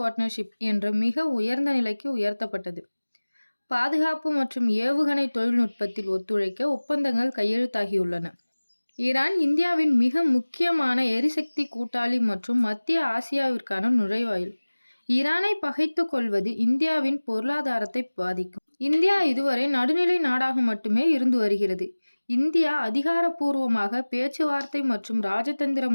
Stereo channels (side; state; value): both; inverted; correlation -1.00